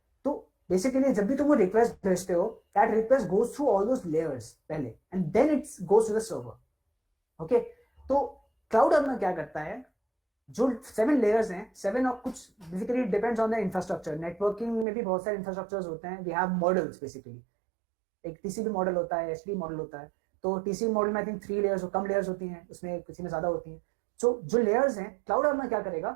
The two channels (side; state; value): left; drops out; at 14.9 s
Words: तो बेसिकली जब भी तुम वो रिक्वेस्ट भेजते हो, that request goes through all those layers पहले, and then it goes to the server. Okay, तो क्लाउड आर्मर क्या करता है, जो 7 लेयर्स हैं, 7 और कुछ basically depends on the infrastructure. Networking में भी बहुत सारे इंफ्रास्ट्रक्चर्स होते हैं. वी हैव मॉडल्स बेसिकली, एक टीसीपी मॉडल होता है, एचटीटीपी मॉडल होता है. तो टीसीपी मॉडल में I think 3 layers, come layers होती हैं, उसमें किसी में ज्यादा होती हैं. सो जो लेयर्स हैं, क्लाउड आर्मर क्या